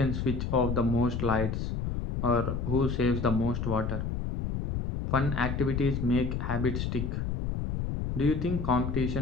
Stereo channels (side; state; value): left; noise; rumble, 2 dB below the sound